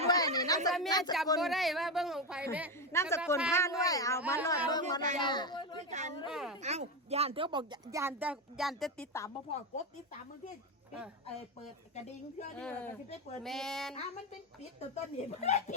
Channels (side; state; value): both; normal; correlation 0.13